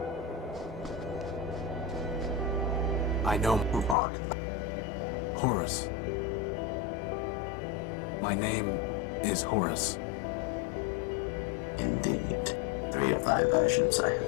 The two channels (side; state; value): right; drops out; at 4.0 s